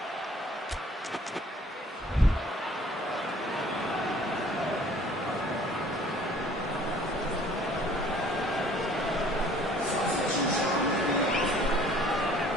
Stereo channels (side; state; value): both; normal; correlation 0.55